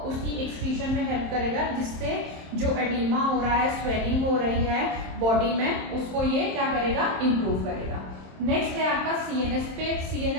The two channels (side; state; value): left; late; 27 ms